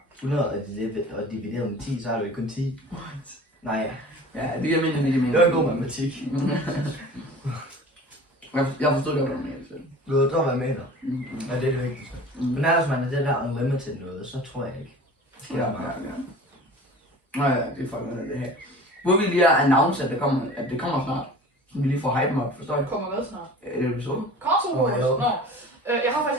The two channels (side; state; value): both; normal; correlation 0.41